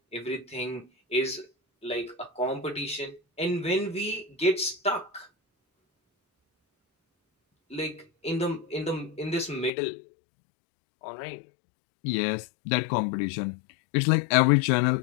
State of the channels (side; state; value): right; drops out; at 9.7 s